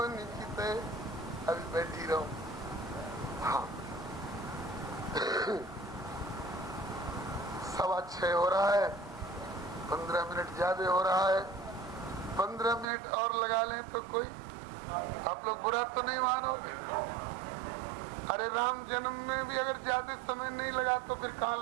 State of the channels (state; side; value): drops out; left; at 12.9 s